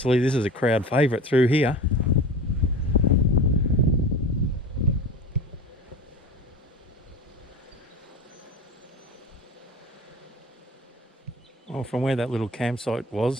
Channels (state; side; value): normal; both; correlation 0.34